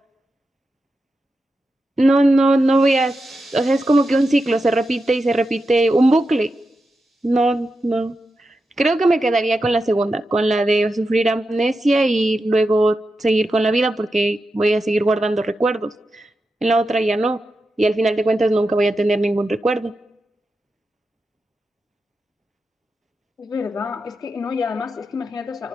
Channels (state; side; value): normal; both; correlation 0.89